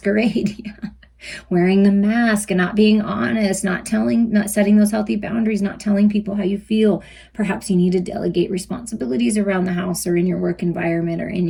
Wearing the mask and not being honest, not setting those healthy boundaries, not telling people how you feel. Perhaps you need to delegate responsibilities around the house or in your work environment or in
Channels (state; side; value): identical; both; correlation 1.00